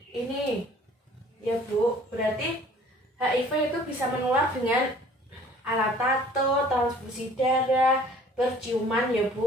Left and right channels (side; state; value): both; normal; correlation 0.52